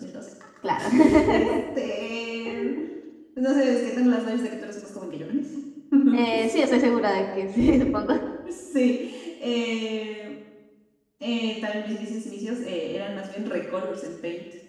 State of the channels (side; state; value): both; identical; correlation 1.00